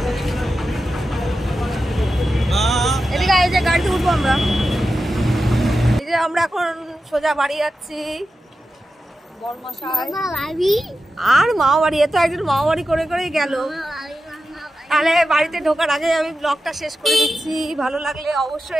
এদিকে এই যে গাড়িতে উঠবো আমরা। এই যে আমরা এখন সোজা বাড়ি যাচ্ছি। বড়মশাই আর মামা বাড়ি, এত একজন মামা বাড়ি করে করেই গেল। তাহলে বাড়িতে ঢোকার আগে আমি ব্লগটা শেষ করে দিচ্ছি। ভালো লাগলে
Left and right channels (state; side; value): normal; both; correlation 0.91